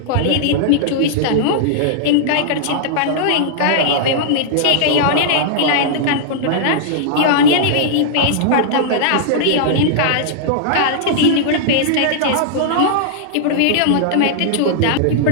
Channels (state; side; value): different; both; correlation -0.01